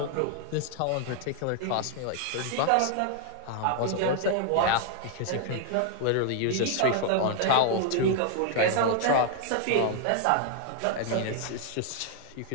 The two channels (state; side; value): different; both; correlation 0.00